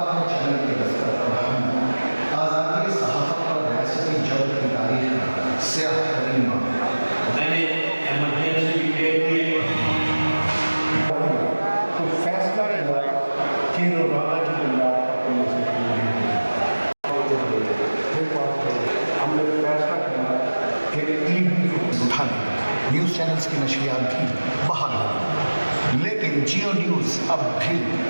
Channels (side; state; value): both; inverted; correlation -1.00